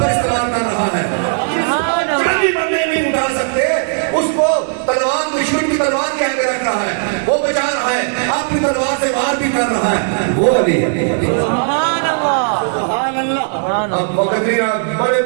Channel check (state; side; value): silent; left; 60 dB below the other